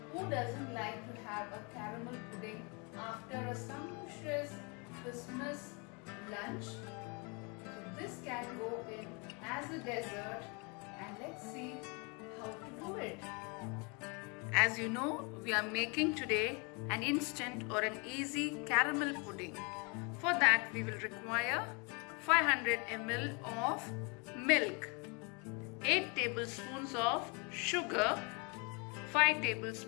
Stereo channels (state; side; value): quieter; right; 31.9 dB